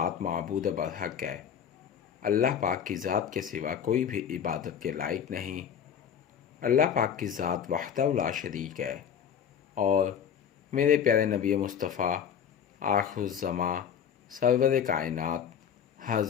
معبود برحق ہے، اللہ پاک کی ذات کے سوا کوئی بھی عبادت کے لائق نہیں۔ اللہ پاک کی ذات وحدہ لا شریک ہے، اور میرے پیارے نبی مصطفیٰ آخر الزماں سرور کائنات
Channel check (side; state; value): right; quieter; 8.2 dB